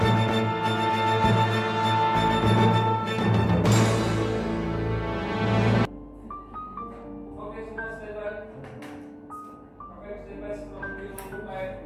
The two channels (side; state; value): both; identical; correlation 1.00